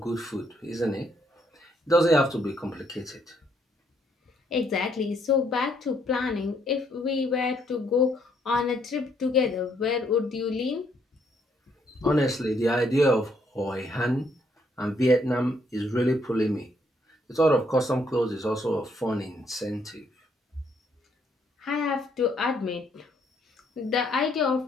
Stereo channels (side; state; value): both; normal; correlation 0.71